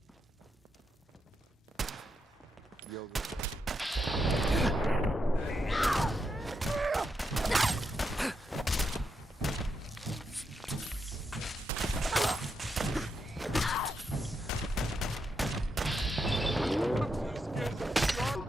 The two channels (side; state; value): both; normal; correlation 0.82